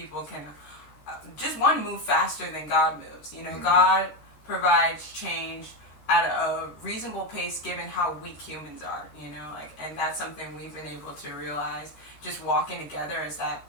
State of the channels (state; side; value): late; right; 14 ms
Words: can just move faster than God moves. You know, God provides change at a reasonable pace given how weak humans are, you know, like, and that's something we've been able to realize just walking together, is that